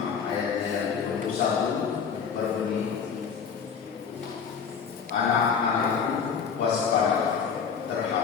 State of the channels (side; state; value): right; quieter; 6.5 dB